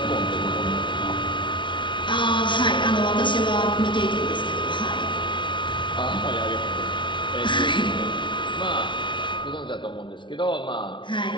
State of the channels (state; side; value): late; right; 0.24 ms